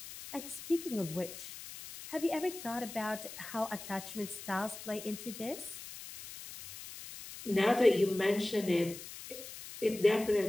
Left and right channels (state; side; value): noise; left; hiss, 12 dB below the sound